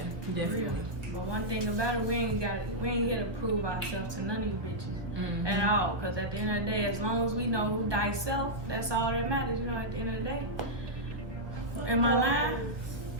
definitely. But one thing about it, we ain't here to prove ourselves to none of you bitches at all. Cause at the end of the day, as long as we know who thyself, that's all that matters. You know, at the end of the day. Am I lying?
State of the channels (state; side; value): late; left; 1.2 ms